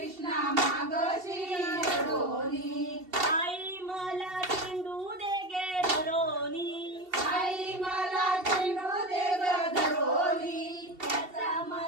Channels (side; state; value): left; late; 2.7 ms